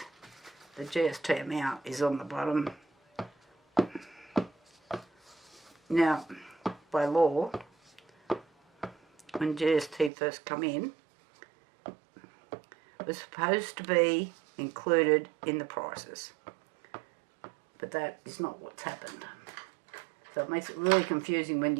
the GST amount is on the bottom. Now, by law, when GST first come in, it was supposed to be included in the prices, but that is not what's happened. So it makes it really confusing when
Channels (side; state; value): left; drops out; at 10.1 s